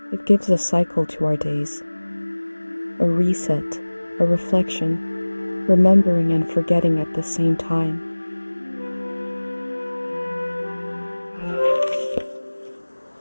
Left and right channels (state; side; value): inverted; both; correlation -1.00